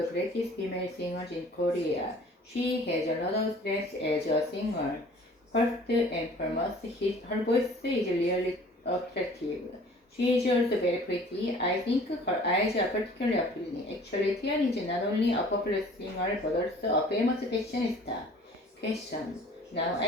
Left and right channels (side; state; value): both; normal; correlation 0.50